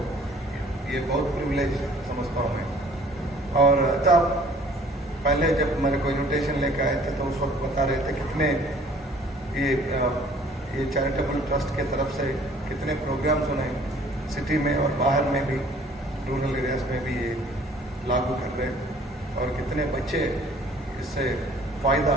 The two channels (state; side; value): normal; both; correlation 0.54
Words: ये बहुत प्रिविलेज समझता हूँ मैं। और तब पहले जब मेरे को इन्विटेशन लेकर आए थे तो उस वक्त बता रहे थे कितने ये चैरिटेबल ट्रस्ट के तरफ से कितने प्रोग्राम्स उन्हें सिटी में और बाहर में भी, रूरल एरियाज में भी ये लागू कर रहे हैं और कितने बच्चे इससे